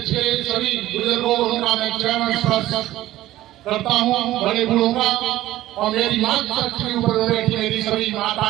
के सभी बुजुर्गों उनका मैं चरण स्पर्श करता हूँ, बड़े बूढ़ों का, और मेरी मातृशक्ति ऊपर बैठी मेरी सभी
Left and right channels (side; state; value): left; quieter; 15.1 dB